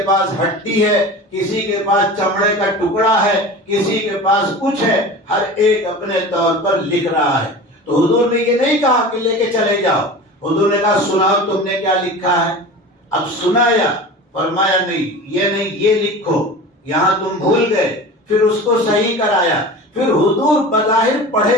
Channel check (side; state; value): both; normal; correlation 0.34